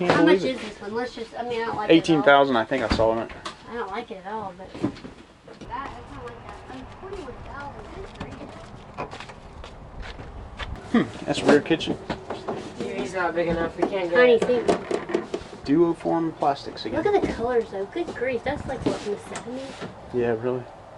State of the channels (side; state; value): both; identical; correlation 1.00